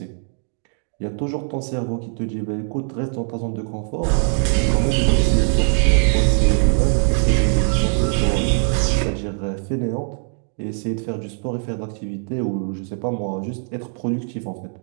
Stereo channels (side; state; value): left; silent; 56 dB below the other